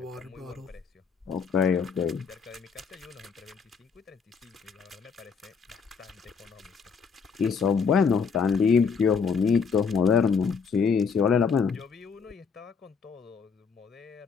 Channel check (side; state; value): right; quieter; 5.7 dB